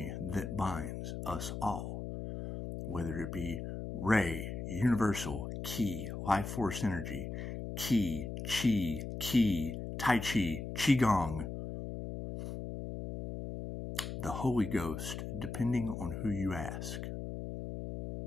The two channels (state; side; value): noise; left; hum, 6 dB below the sound